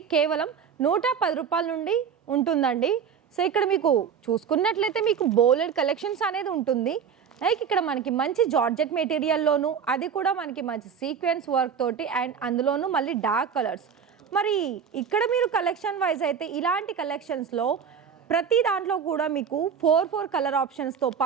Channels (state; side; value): quieter; left; 7.2 dB